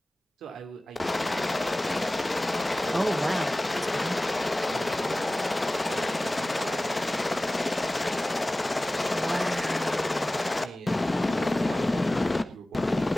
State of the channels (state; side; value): normal; both; correlation 0.98